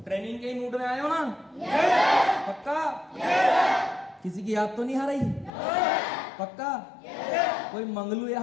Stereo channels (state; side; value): drops out; right; at 5.5 s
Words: ट्रेनिंग के मूड में आए हो ना? पक्का? किसी की याद तो नहीं आ रही? पक्का? कोई मंगलू